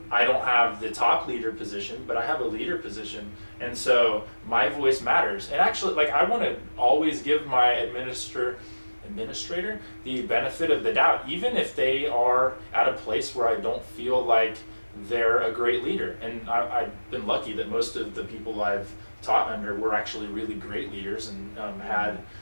I don't have the top leader position, but I have a leader position, and so my voice matters. And actually, like, I want to always give my administrator the benefit of the doubt, even if they are at a place where I don't feel like they're a great leader. And I've been lucky that most of the people I've taught under were actually really great leaders and had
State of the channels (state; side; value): inverted; both; correlation -1.00